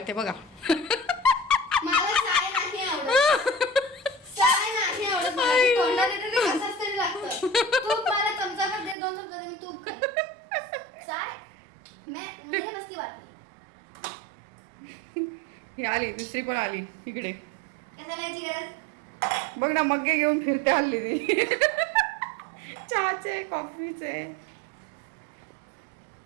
बघा. मला साय नाही आवडत. साय नाही आवडत मला. ते तोंडात येतं ते कसंच तरी लागतं. तूप मला चमचाभर दे. 2 चमचा दे. मी तूप खाईन. साय मुझे बस की बात नहीं. ही आली दुसरी पण आली इकडे. कशाला याची गरज? बघ ना मग्गे घेऊन फिरते हल्ली ती. चहाचे कॉफीचे.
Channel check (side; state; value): left; drops out; at 9.0 s